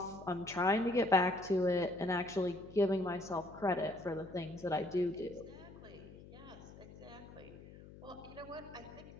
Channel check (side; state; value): left; noise; hum, 17 dB below the sound